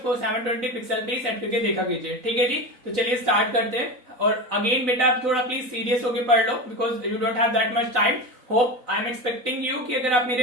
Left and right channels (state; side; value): late; left; 4.0 ms